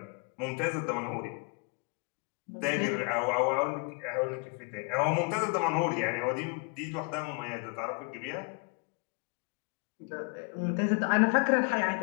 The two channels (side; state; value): right; quieter; 34.8 dB